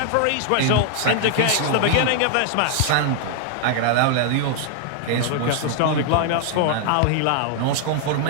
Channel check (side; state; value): both; different; correlation 0.00